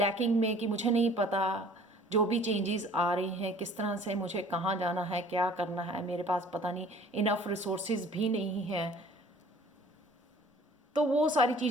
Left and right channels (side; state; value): both; normal; correlation 0.51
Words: में कि मुझे नहीं पता, जो भी चेंजेस आ रही हैं किस तरह से, मुझे कहाँ जाना है, क्या करना है, मेरे पास पता नहीं, इनफ रिसोर्सेज भी नहीं हैं, तो वो सारी